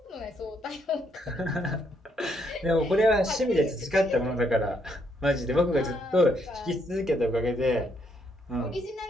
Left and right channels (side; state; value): both; normal; correlation 0.73